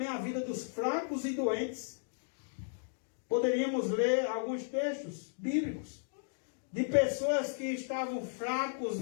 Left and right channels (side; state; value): right; silent; digital silence